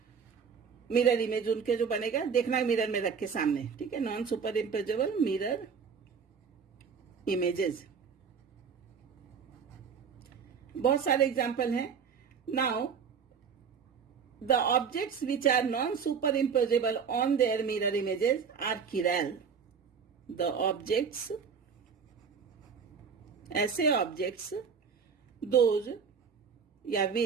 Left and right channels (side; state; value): left; quieter; 6.3 dB